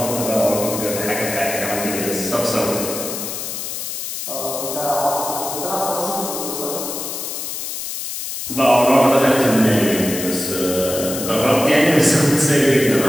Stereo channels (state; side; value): noise; left; hiss, 6 dB below the sound